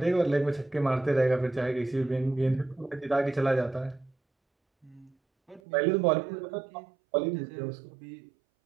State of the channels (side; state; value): left; drops out; at 5.6 s